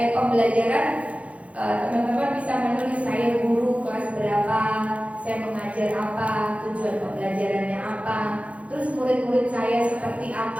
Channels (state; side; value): late; left; 0.064 ms